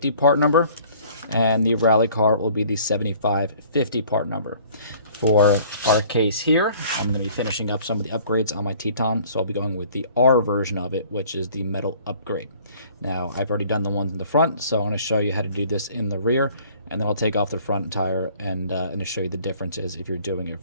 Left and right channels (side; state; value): both; inverted; correlation -0.53